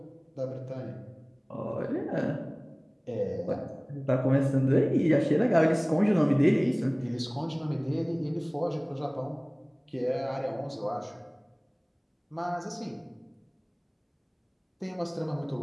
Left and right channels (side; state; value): both; identical; correlation 1.00